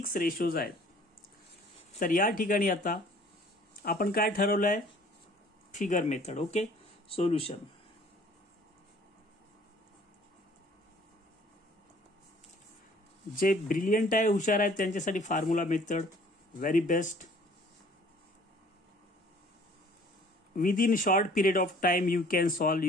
रेशोज आहेत. तर या ठिकाणी आता आपण काय ठरवलंय? Figure method. ओके. सोल्युशन. जे ब्रिलियंट आहे, हुशार आहेत, त्यांच्यासाठी formula method very best. Within short period of time you can solve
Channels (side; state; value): both; normal; correlation 0.54